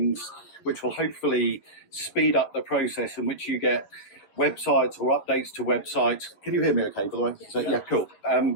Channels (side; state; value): right; late; 11 ms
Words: which will hopefully speed up the process in which you get websites or updates to websites. Can you hear me okay, by the way? So, yeah, cool.